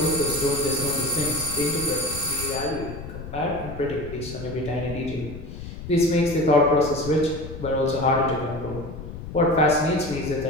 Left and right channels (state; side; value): noise; left; rumble, 11 dB below the sound